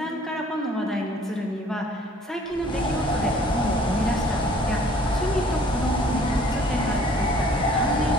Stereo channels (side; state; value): both; normal; correlation 0.55